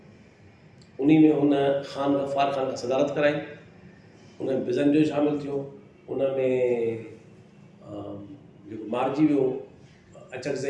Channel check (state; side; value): identical; both; correlation 1.00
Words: उन में हुन ख़ान गफ़ार ख़ान खां सदारत कराई, उन में बिज़न जो शामिलु थियो, उन में जेको मारिजी वियो